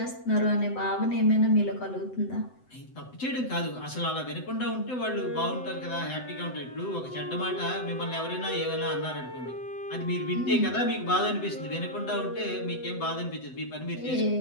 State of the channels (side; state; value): right; late; 7.9 ms